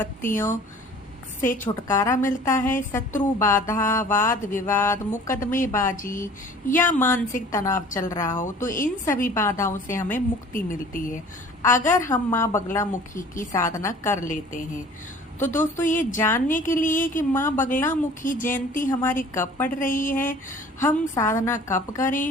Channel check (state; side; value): normal; both; correlation 0.48